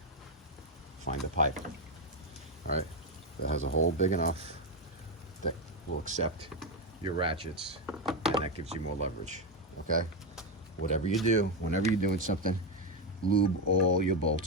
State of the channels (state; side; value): normal; both; correlation 0.07